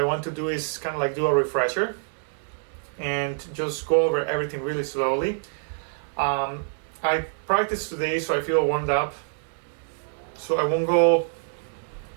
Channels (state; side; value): silent; left; digital silence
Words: want to do is kind of like do a refresher and just go over everything really slowly. I practiced today, so I feel warmed up. So I won't go,